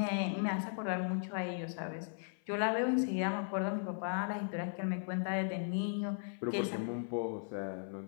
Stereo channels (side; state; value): right; silent; 53 dB below the other